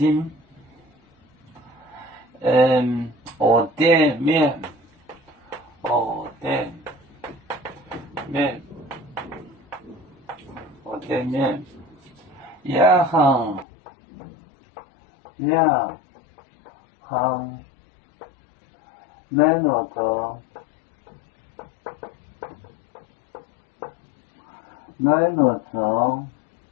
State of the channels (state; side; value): drops out; right; at 13.7 s